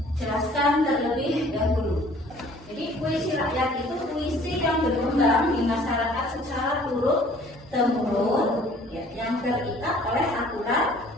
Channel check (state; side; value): normal; both; correlation 0.54